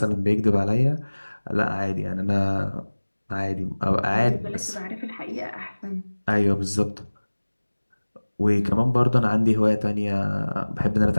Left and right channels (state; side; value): inverted; both; correlation -1.00